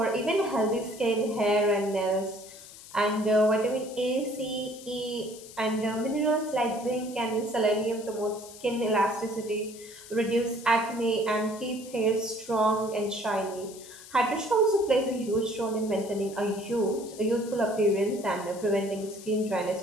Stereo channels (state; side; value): noise; left; hiss, 17 dB below the sound